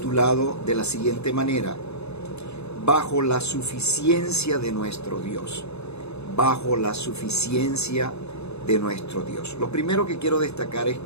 de la siguiente manera: bajo la suficiencia de nuestro Dios. Bajo la suficiencia de nuestro Dios. Lo primero que quiero destacar es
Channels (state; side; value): late; right; 0.80 ms